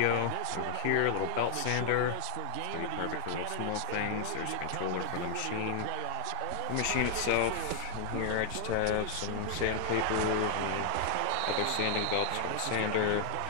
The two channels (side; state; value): both; different; correlation 0.00